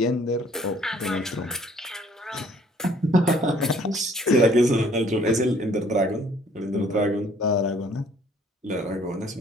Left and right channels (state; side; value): normal; both; correlation 0.59